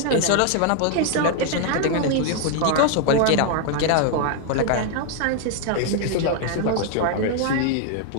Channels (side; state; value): both; different; correlation 0.00